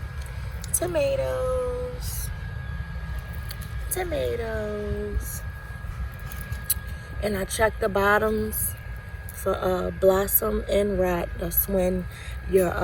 Tomatoes. And I checked the bottoms for blossom and rot. That's when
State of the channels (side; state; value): both; identical; correlation 1.00